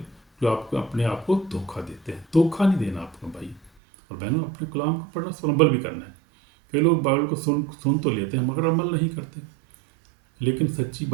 جو آپ کو اپنے آپ کو دھوکہ دیتے ہیں. دھوکہ نہیں دینا آپ کو بھائی اور بہنوں. اپنے کلام کو پڑھنا، اس پر عمل بھی کرنا ہے. کئی لوگ بائبل کو سن تو لیتے ہیں مگر عمل نہیں کرتے. لیکن سچی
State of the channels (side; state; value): left; drops out; at 3.7 s